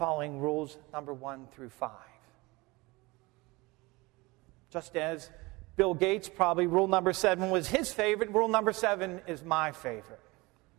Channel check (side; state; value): left; quieter; 23.3 dB